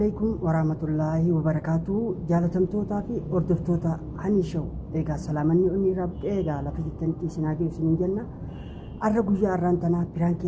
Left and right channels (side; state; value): both; identical; correlation 1.00